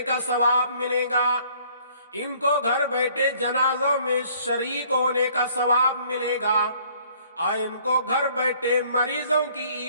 کا ثواب ملے گا، ان کو گھر بیٹھے جنازوں میں شریک ہونے کا ثواب ملے گا، اور ان کو گھر بیٹھے مریضوں کی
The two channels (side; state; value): both; inverted; correlation -0.59